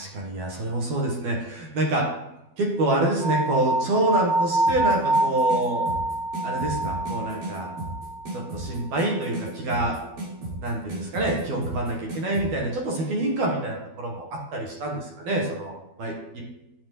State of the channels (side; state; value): left; late; 12 ms